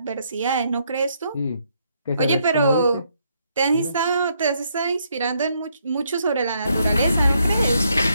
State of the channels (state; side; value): inverted; both; correlation -0.74